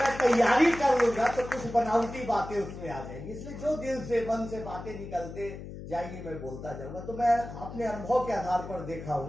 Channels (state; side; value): noise; left; hum, 11 dB below the sound